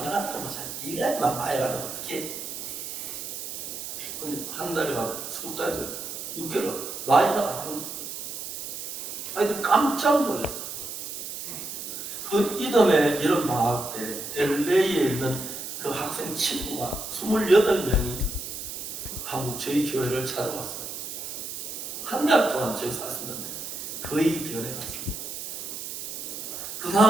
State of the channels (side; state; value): right; noise; hiss, 7 dB below the sound